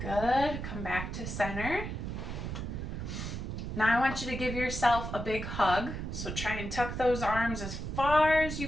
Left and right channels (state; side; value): noise; right; rumble, 5 dB below the sound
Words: Good, come back to center. Now I want you to give yourself a big hug. So try and tuck those arms as far as